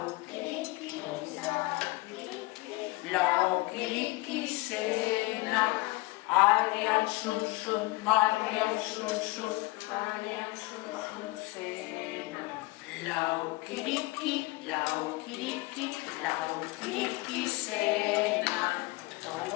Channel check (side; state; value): right; quieter; 22.0 dB